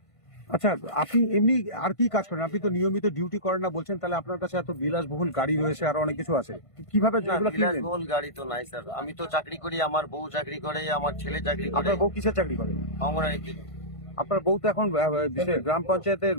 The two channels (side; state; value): right; late; 1.5 ms